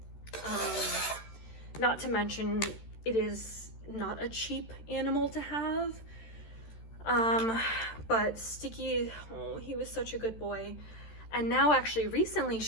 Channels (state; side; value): late; right; 13 ms